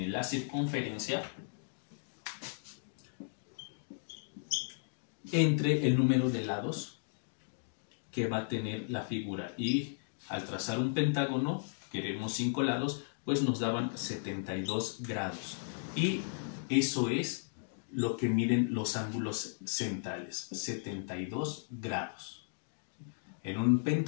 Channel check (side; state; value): right; silent; digital silence